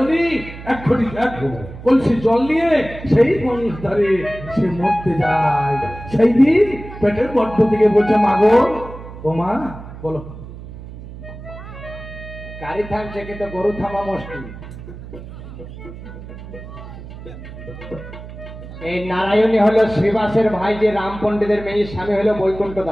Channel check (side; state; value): right; noise; hum, 13 dB below the sound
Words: এক কলসি জল নিয়ে সেই গঙ্গার ধারে সে মরতে যায়। সেই দিন পেটের গর্ভ থেকে বলছে মা গো, ও মা বলো। গাড়ি থামছে কিন্তু গরু থামা মুশকিল। এই নারায়ণী হলো শ্রীবাসের ভাই, যে রাম পণ্ডিতের মেয়ে, স্বামী হলো বৈকুণ্ঠ